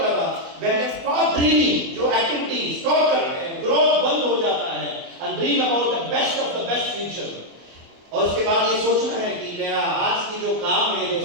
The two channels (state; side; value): late; left; 24 ms